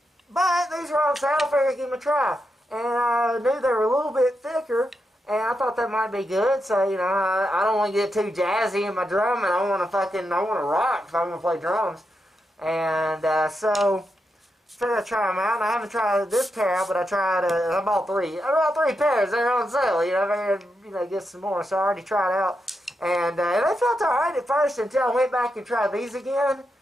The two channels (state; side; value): normal; both; correlation 0.85